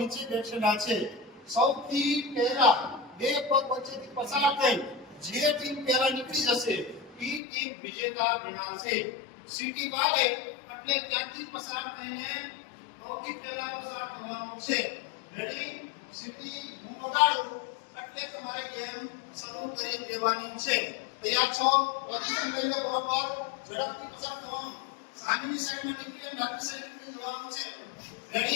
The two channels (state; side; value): drops out; right; at 7.4 s